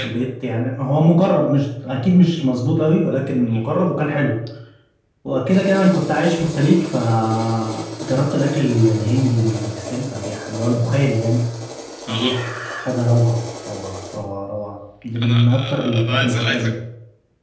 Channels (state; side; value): identical; both; correlation 1.00